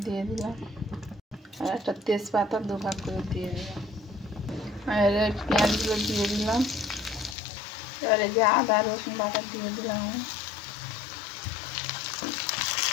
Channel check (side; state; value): right; drops out; at 7.4 s